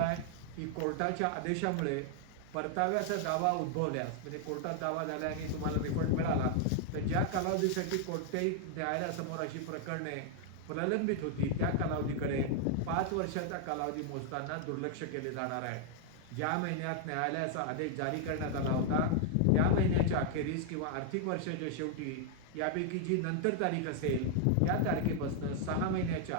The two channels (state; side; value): different; both; correlation 0.00